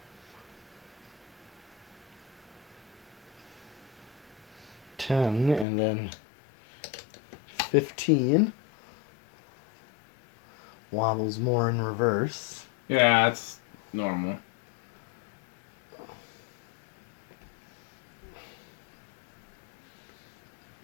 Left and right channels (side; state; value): right; drops out; at 5.7 s